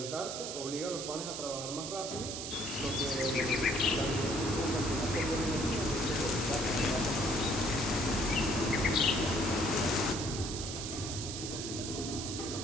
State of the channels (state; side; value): noise; right; hiss, 6 dB below the sound